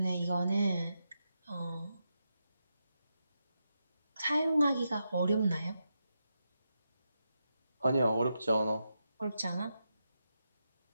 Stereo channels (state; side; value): inverted; both; correlation -0.87